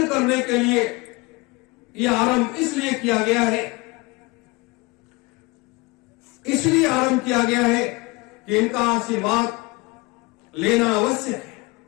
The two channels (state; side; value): quieter; right; 24.9 dB